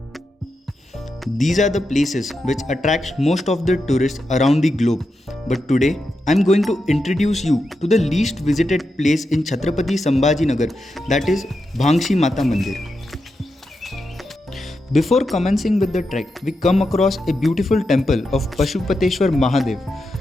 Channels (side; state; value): both; normal; correlation 0.87